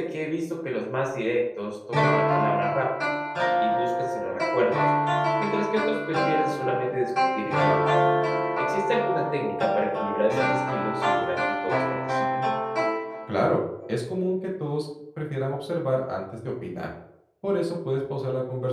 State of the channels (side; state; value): both; identical; correlation 1.00